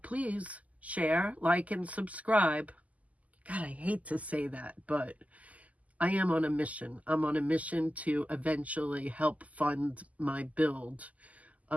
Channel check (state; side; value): late; left; 0.073 ms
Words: share, like, and subscribe. God, I hate to say that, but I am on a mission. I'm on a mission to eventually help fund my build